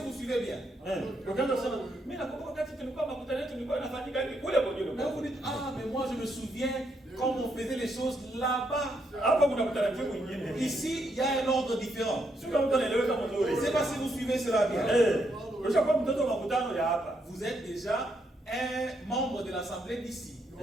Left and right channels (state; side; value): normal; both; correlation 0.77